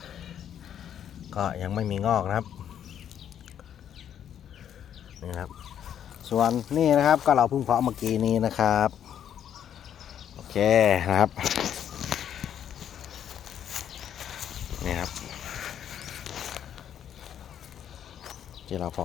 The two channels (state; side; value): quieter; right; 9.6 dB